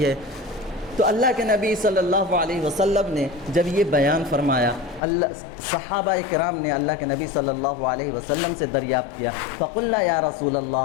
ہے۔ تو اللہ کے نبی صلی اللہ علیہ وسلم نے جب یہ بیان فرمایا، صحابہ کرام نے اللہ کے نبی صلی اللہ علیہ وسلم سے دریافت کیا، فقلنا یا رسول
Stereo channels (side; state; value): right; drops out; at 5.0 s